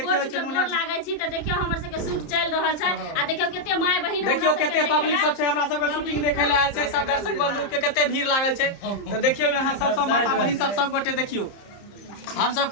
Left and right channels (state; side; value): late; right; 30 ms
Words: चुनमुनिया लागे छी। त देखियो हमर सब के शूट चल रहल छै आ देखियो केते माय बहिन देखियो केते पब्लिक सब छै हमरा सब के शूटिंग देखे ले आयल छै। सब दर्शक बंधु के केते भीड़ लागल छै। तो देखियो यहां सब माता बहिन सब गोटे देखियो हम सब